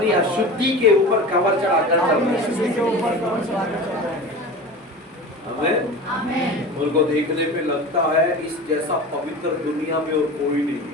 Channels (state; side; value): normal; both; correlation 0.33